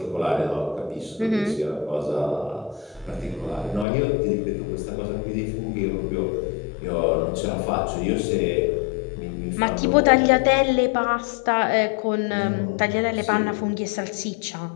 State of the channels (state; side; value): drops out; right; at 3.9 s